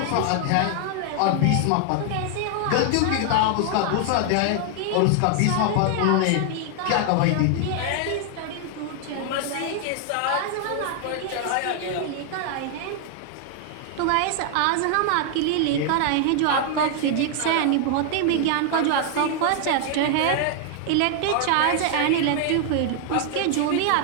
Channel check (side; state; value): both; different; correlation 0.00